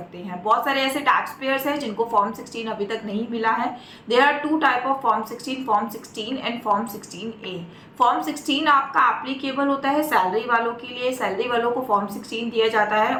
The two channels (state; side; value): identical; both; correlation 1.00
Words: हैं। बहुत सारे ऐसे टैक्स पेयर्स हैं जिनको फॉर्म 16 अभी तक नहीं मिला है। There are two type of form 16 and form 16A। Form 16 आपका एप्लीकेबल होता है सैलरी वालों के लिए। सैलरी वालों को फॉर्म 16 दिया जाता है,